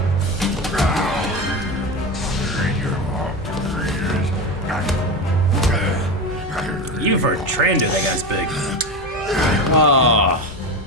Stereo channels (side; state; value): both; normal; correlation 0.22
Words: Even for a Trando, that guy's big. Oh,